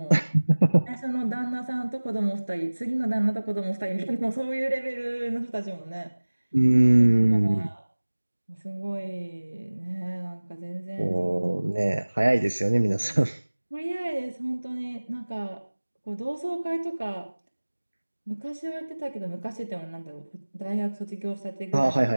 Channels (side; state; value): both; inverted; correlation -1.00